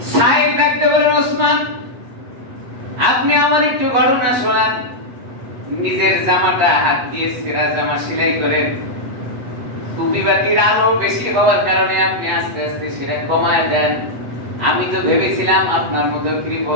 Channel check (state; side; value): late; left; 8.1 ms